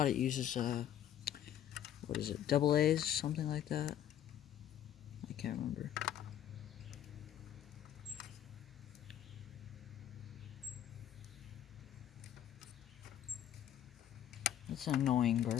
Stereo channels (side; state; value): right; quieter; 10.9 dB